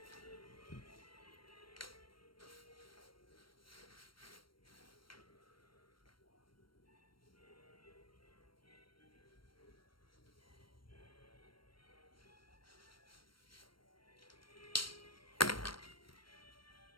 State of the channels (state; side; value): late; right; 0.73 ms